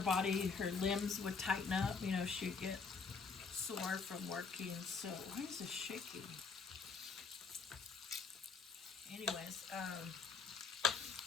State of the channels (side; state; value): right; quieter; 5.1 dB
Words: her limbs would tighten up. You know, she'd get sore from working. So why is this shaking? Anyways, the